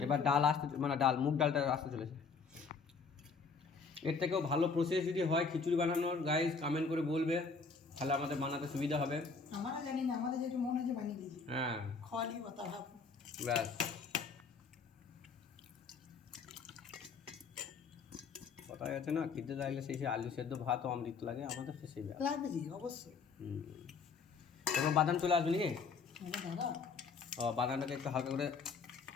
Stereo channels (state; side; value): quieter; right; 5.0 dB